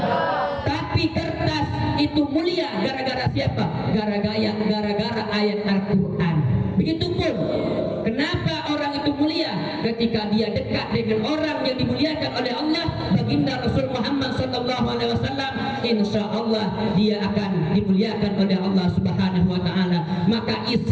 Tapi kertas itu mulia gara-gara siapa? Gara-gara ayat Al-Quran. Begitupun kenapa orang itu mulia? Ketika dia dekat dengan orang yang dimuliakan oleh Allah, baginda Rasul Muhammad sallallahu alaihi wasallam, insya Allah dia akan dimuliakan oleh Allah Subhanahu wa taala. Maka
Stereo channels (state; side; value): identical; both; correlation 1.00